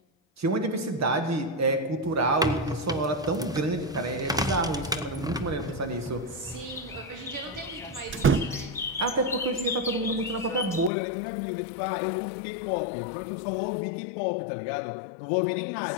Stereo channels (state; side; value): drops out; right; at 10.9 s